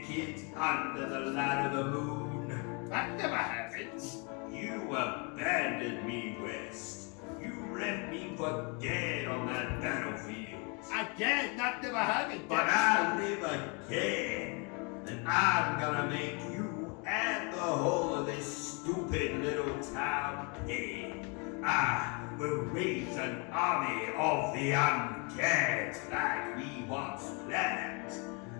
under the light of the moon? That never happens. You abandoned me, West. You left me for dead on that battlefield. Again, that never happened. But I live again, and I'm gonna make you and the whole of this stupid little town paid. I will raise an army of the undead like we once planned.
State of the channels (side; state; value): right; quieter; 32.9 dB